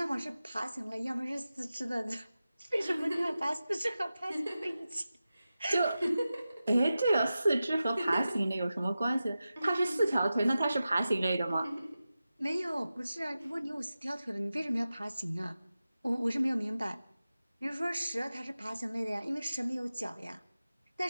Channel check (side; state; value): both; inverted; correlation -0.93